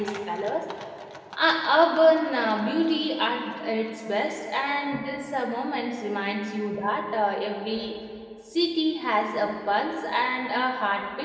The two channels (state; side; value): identical; both; correlation 1.00